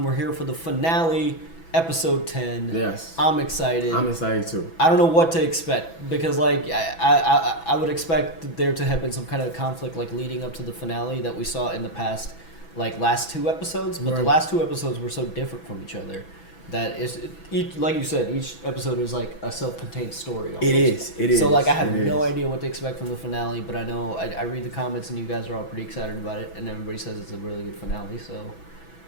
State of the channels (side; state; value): right; late; 6.1 ms